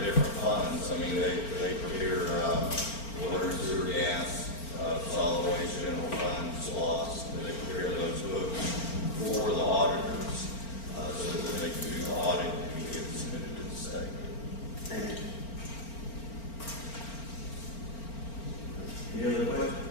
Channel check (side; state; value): right; late; 4.4 ms